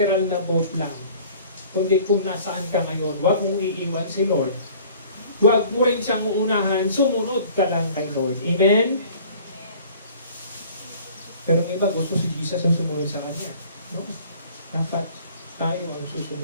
na boat lang. Kundi kung nasaan ka ngayon, huwag mong iiwan si Lord. Huwag mo rin siyang uunahan, sumunod ka lang kay Lord. Amen? Pero ng iba, gusto si Jesus ang sumunod sa Kanya. No? Dapat tayo ang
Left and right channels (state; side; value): inverted; both; correlation -0.50